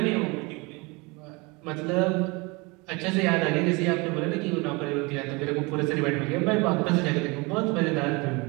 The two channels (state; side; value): quieter; left; 26.9 dB